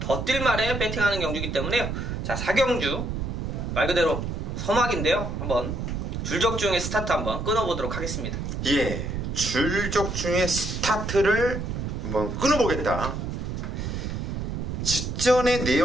뛸 말에 배팅하는 경주이기 때문에요. 자, 4경주 말 그대로 서막인데요. 한번 줄적중의 스타트 한번 끊어보도록 하겠습니다. 예, 줄적중의 스타트를 한번 끊어보겠다. 직전의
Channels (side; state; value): right; noise; rumble, 4 dB below the sound